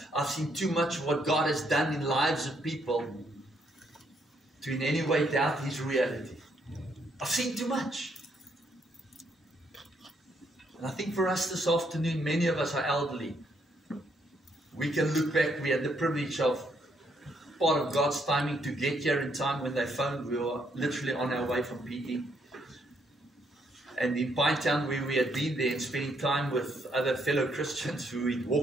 I've seen too much of what God has done in lives of people to in any way doubt His reality. I've seen too much. And I think for us this afternoon, many of us are elderly. We can look back. We had the privilege of part of God's timing to get here in time. When they phoned, we were literally on our way from PE. And in Pinetown, where we had been there and spending time with other fellow Christians who we'd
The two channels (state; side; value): normal; both; correlation 0.73